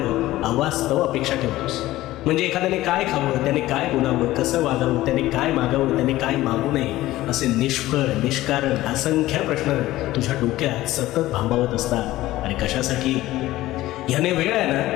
अवास्तव अपेक्षा ठेवतोस. म्हणजे एखाद्याने काय खावं, त्याने काय बोलावं, कसं वागावं, त्याने काय मागावं, त्याने काय मागू नये, असे निष्फळ निष्कारण असंख्य प्रश्न तुझ्या डोक्यात सतत भांबावत असतात. आणि कशासाठी? ह्याने वेळ आहे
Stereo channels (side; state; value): right; quieter; 16.3 dB